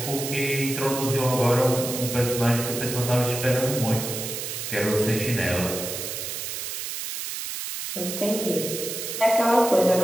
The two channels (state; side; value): noise; right; hiss, 5 dB below the sound